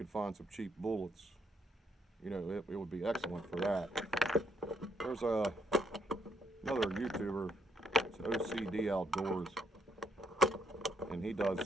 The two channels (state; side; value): normal; both; correlation 0.73